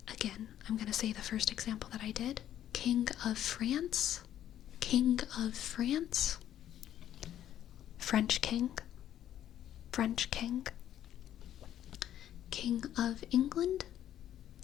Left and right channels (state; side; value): quieter; right; 11.3 dB